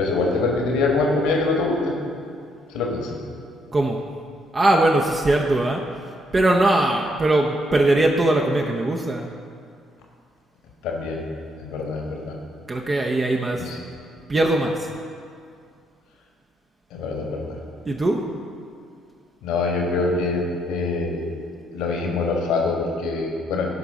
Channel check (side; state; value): both; normal; correlation 0.73